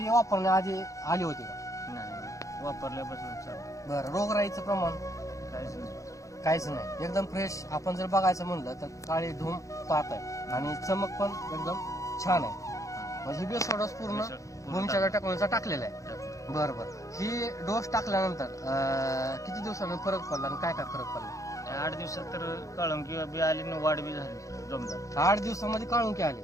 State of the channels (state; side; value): late; right; 0.15 ms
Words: वापरण्याआधी आली होती का? नाही वापरल्यापासून चालू. बरं, रोगराईचं प्रमाण काहीच नाही. काहीच नाही, एकदम फ्रेश. आपण जर बघायचं म्हणलं तर काळी धूम पात आहे आणि चमक पण एकदम छान आहे. म्हणजे बेसोडोस पूर्ण भूमीच्या टेक्नॉलॉजीचा टाकलेला आहे. बरं बरं. ही डोस टाकल्यानंतर किती दिवसांनी फरक पडला आणि काय काय फरक पडला? 8 दिवसात तर काळुंकी बी आली आणि वाढ बी झाली जोमदार. 8 दिवसामध्ये काळुंकी आली